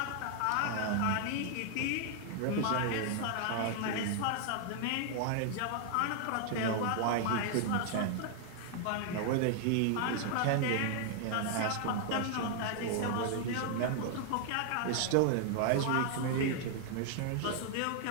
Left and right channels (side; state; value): both; different; correlation 0.00